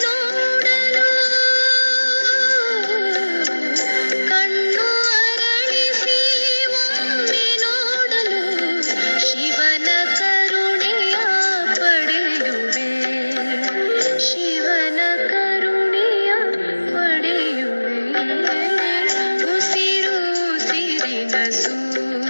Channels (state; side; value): inverted; both; correlation -1.00